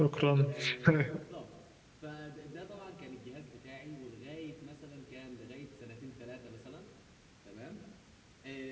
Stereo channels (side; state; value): both; identical; correlation 1.00